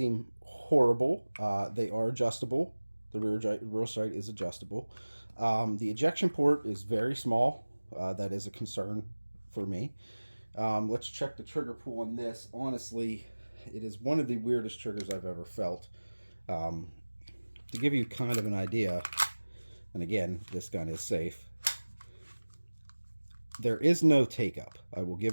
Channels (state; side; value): inverted; both; correlation -1.00